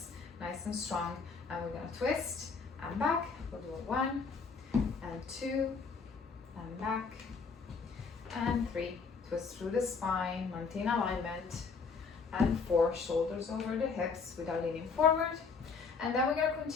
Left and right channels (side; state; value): right; quieter; 5.0 dB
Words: nice and strong. And we're going to twist and back. We'll do 1 and 2 and back and 3, twist through the spine, maintain alignment, and 4, shoulders over the hips without leaning forward. And then we're going to